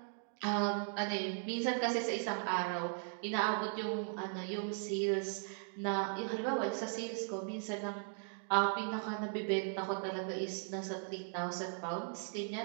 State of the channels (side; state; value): left; silent; 52 dB below the other